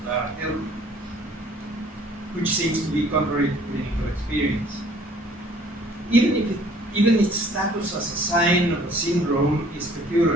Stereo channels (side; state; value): both; normal; correlation 0.55